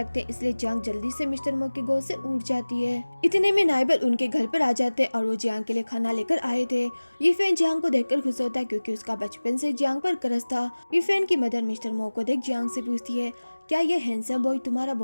हैं इसलिए जियांग जल्दी से मिस्टर मो की गोद से उठ जाती है। इतने में नाइबर उनके घर पर आ जाते हैं और वो जियांग के लिए खाना लेकर आए थे। ये फैन जियांग को देखकर खुश होता है क्योंकि उसका बचपन से जियांग पर क्रश था। ये फैन की मदर मिस्टर मो को देख जियांग से पूछती है क्या ये हैंडसम बॉय तुम्हारा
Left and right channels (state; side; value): inverted; both; correlation -1.00